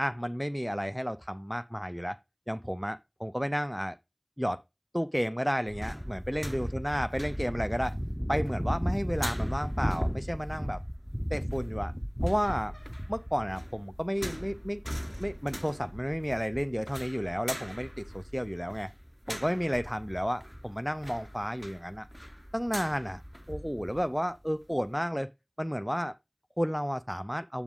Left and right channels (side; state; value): both; identical; correlation 1.00